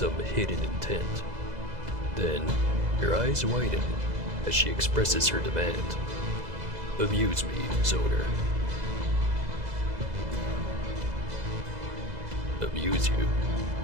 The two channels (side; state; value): left; late; 2.0 ms